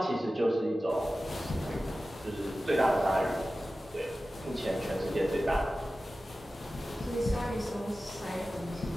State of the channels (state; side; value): normal; both; correlation 0.95